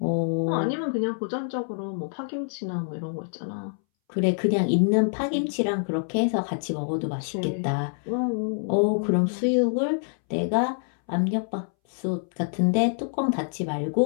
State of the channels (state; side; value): silent; right; 61 dB below the other